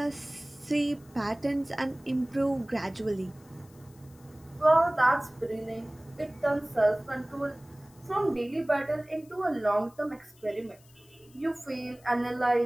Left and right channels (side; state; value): left; noise; hiss, 28 dB below the sound